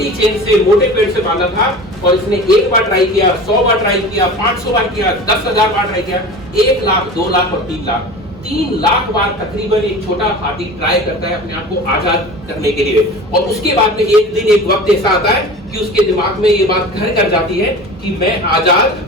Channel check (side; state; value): both; normal; correlation 0.36